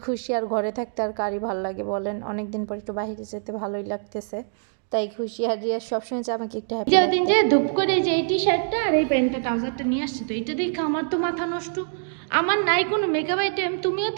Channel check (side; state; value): left; silent; digital silence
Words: খুশি। আর ঘরে থাকতে আর কারই ভালো লাগে বলেন? অনেক দিন পর একটু বাইরে যেতে ভালোই লাগতেছে, তাই খুশি। আর রিয়া সবসময় যে আমাকে একটু হ্যাপি যে দিন যে ধূপ করে যে এই টি শার্টটা আর এই প্যান্টটা ট্রাউজারটা নিয়ে আসছে, তো এটা দেখে আমার তো মাথা নষ্ট। আমার নাই কোনো মেকআপ আইটেম, তুমিও